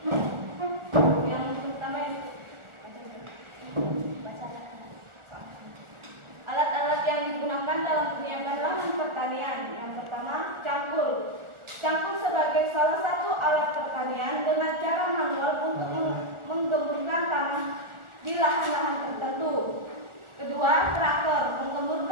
Yang pertama alat-alat yang digunakan dalam penyiapan lahan pertanian. Yang pertama, cangkul. Cangkul sebagai salah satu alat pertanian dengan cara manual untuk menggemburkan tanah di lahan-lahan tertentu. Kedua, traktor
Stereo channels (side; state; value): left; late; 1.4 ms